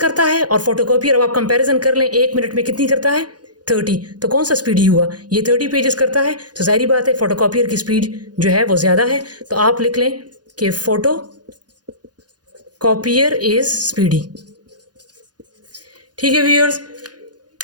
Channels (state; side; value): late; left; 0.69 ms